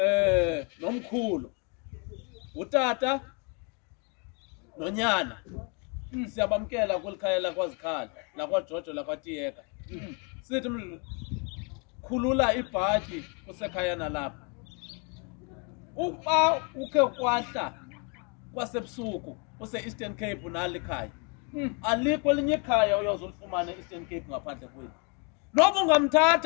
nomkhulu. Utata nonyana. Siyabamkela kwelikhaya lakwaZikhala, lakwaJojo lakwaTiyeka. Sithi khulula ibhaki kusekhaya nalapha. Uba ukhe kwahla kwasebusuku use-Eastern Cape nalikhaya. Alikho elinye ikhaya uyozulifumana e-Eastern Cape ngaphandle kwethu. Noba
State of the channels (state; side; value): quieter; right; 35.0 dB